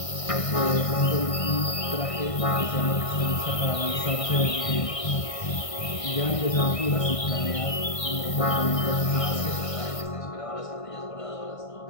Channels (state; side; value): late; right; 1.5 ms